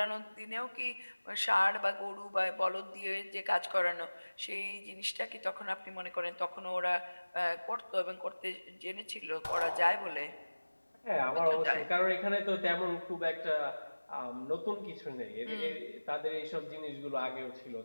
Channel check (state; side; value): inverted; both; correlation -1.00